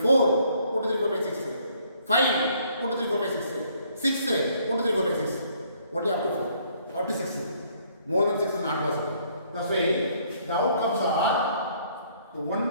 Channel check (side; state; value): both; inverted; correlation -0.65